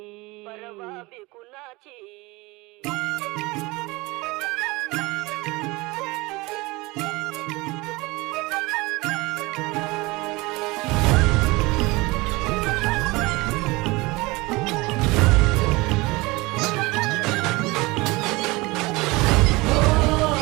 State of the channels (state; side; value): quieter; left; 23.1 dB